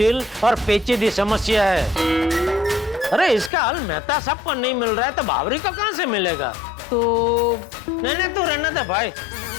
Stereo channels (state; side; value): drops out; right; at 3.5 s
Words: और पेचीदी समस्या है। अरे इसका हल मेहता साहब को नहीं मिल रहा है, तो बावरी को कहां से मिलेगा? तो नहीं, तू रहने दे भाई,